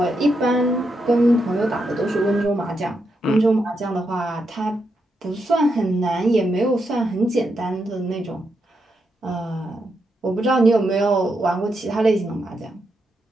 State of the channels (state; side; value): normal; both; correlation 0.83